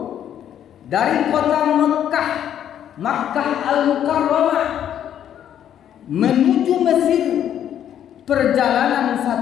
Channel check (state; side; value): quieter; right; 10.1 dB